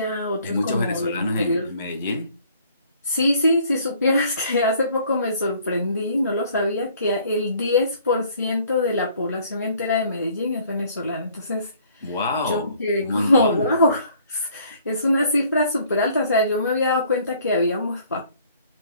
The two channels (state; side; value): inverted; both; correlation -0.59